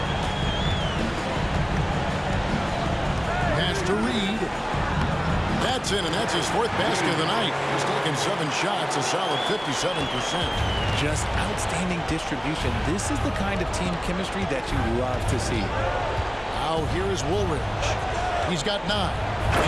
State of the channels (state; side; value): identical; both; correlation 1.00